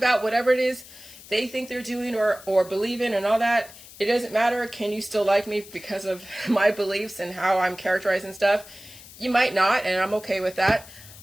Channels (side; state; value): left; noise; hiss, 19 dB below the sound